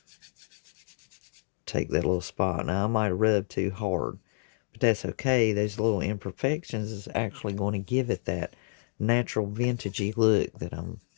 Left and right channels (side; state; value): right; silent; digital silence